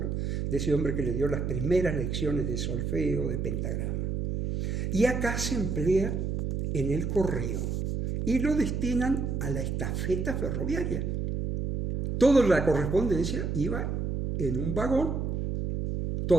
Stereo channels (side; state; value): right; noise; hum, 1 dB below the sound